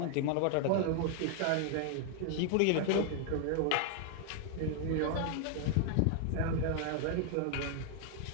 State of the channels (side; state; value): both; different; correlation 0.00